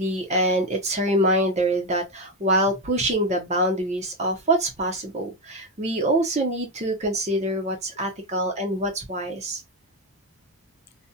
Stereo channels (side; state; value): both; normal; correlation 0.10